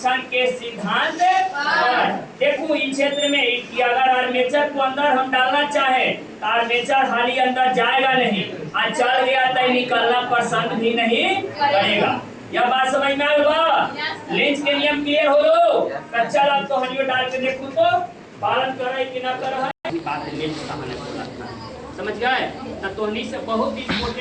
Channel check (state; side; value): identical; both; correlation 1.00